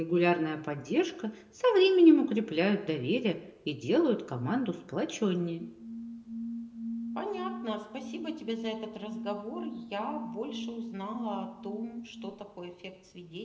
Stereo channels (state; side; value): identical; both; correlation 1.00